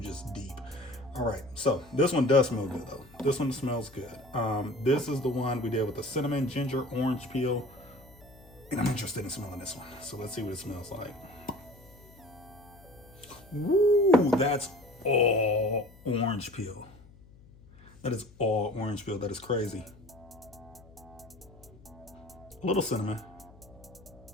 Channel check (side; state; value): left; noise; hum, 23 dB below the sound